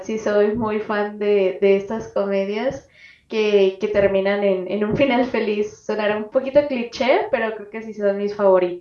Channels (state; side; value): identical; both; correlation 1.00